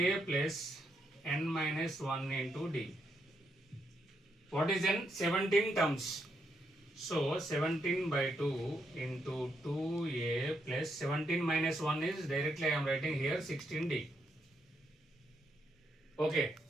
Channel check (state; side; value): normal; both; correlation 0.78